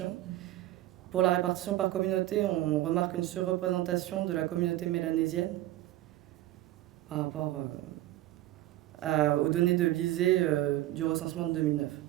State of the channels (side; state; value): left; quieter; 15.4 dB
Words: Pour la répartition par communauté, on remarque une surreprésentation de la communauté mélanésienne par rapport aux données de l'ISEE du recensement de 2009.